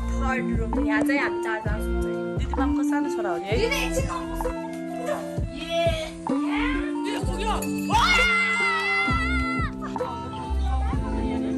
third room. यहाँ चाहिँ हामी चारजना सुत्छ। दिदी मामको सानो छोरा हो नि है।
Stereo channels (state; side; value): identical; both; correlation 1.00